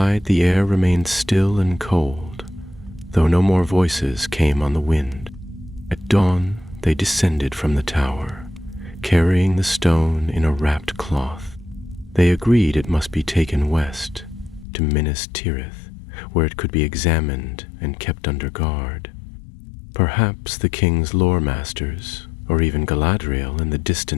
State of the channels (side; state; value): right; drops out; at 14.7 s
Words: the air remained still and cold, though no more voices came on the wind. At dawn, they descended from the tower, carrying the stone in a wrapped cloth. They agreed it must be taken west, to Minas Tirith, where it could be examined and kept under guard. Perhaps the king's lore masters, or even Galadriel in the